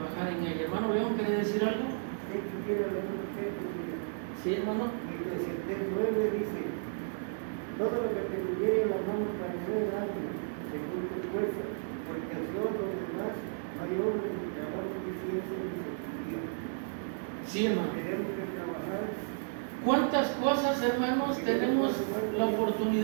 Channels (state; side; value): silent; left; digital silence